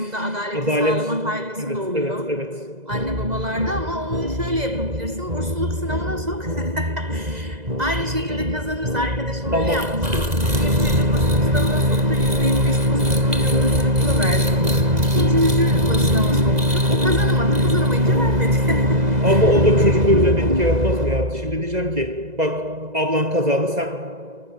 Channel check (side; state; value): left; late; 2.0 ms